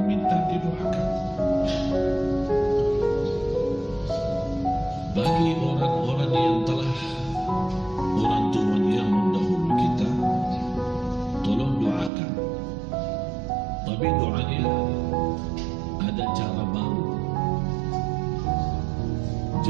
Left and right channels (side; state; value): left; drops out; at 12.1 s